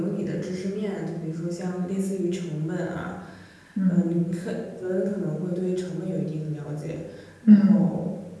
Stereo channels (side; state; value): both; identical; correlation 1.00